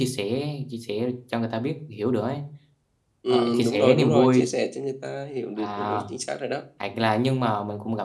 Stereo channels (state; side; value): identical; both; correlation 1.00